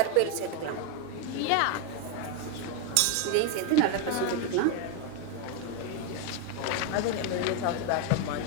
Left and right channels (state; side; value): different; both; correlation 0.02